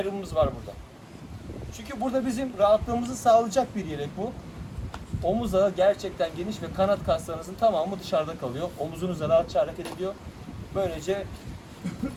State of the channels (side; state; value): both; identical; correlation 1.00